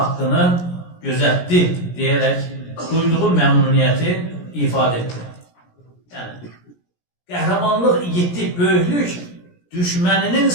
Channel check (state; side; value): late; right; 17 ms